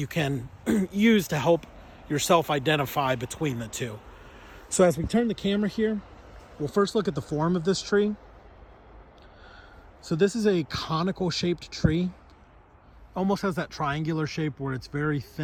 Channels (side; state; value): both; identical; correlation 1.00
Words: can use to help yourself identify between the two. So as we turn the camera here, we'll first look at the form of this tree. So this is a conical shaped tree. Almost has that triangular shape where it's very